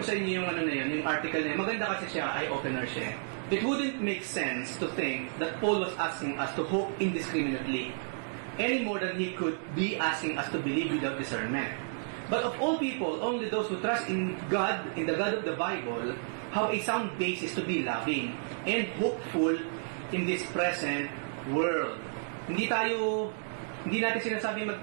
sa inyo yung yung article na yun. Maganda kasi siya, eye-opener siya. It wouldn't make sense to think that Paul was asking us to hope indiscriminately any more than he could be asking us to believe without discernment. But of all people, only those who trust in God, in the God of the Bible, have a sound basis to be loving and hopeful in this present world. Hindi natin sinasabi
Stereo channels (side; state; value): left; silent; digital silence